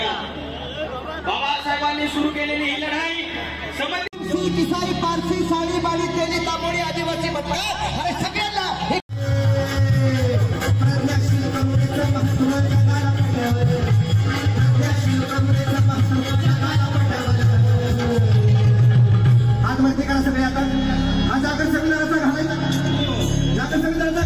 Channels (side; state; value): both; identical; correlation 1.00